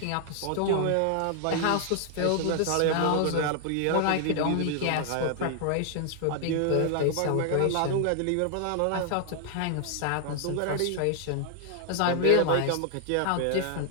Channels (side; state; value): both; different; correlation 0.00